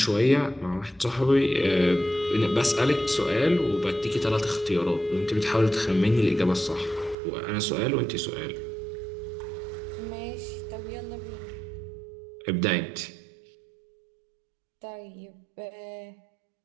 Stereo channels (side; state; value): left; drops out; at 7.2 s